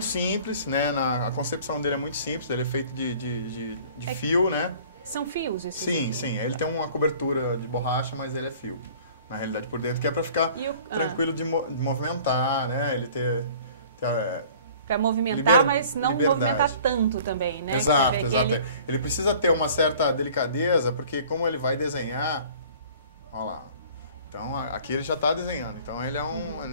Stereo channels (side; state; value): both; inverted; correlation -0.49